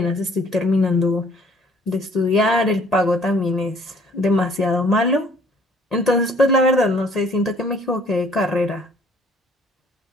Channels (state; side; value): normal; both; correlation 0.59